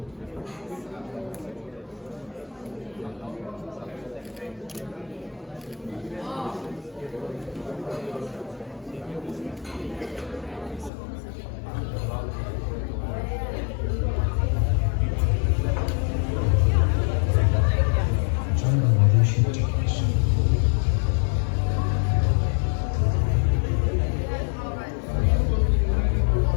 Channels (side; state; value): right; drops out; at 10.9 s